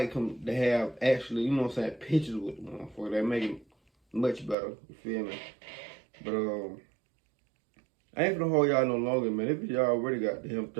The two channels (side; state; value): left; drops out; at 4.5 s